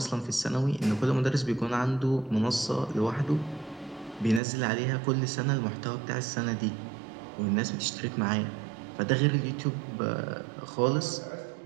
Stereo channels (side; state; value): left; drops out; at 4.4 s